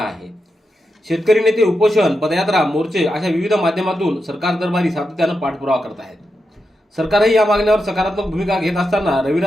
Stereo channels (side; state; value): both; normal; correlation 0.87